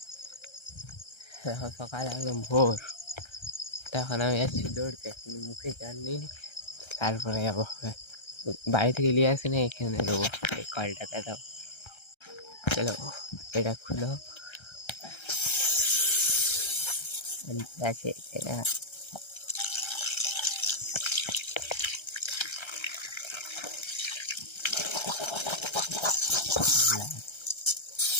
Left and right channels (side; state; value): right; late; 1.3 ms